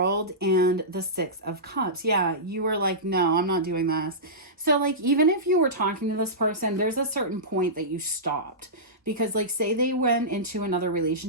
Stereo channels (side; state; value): both; normal; correlation -0.17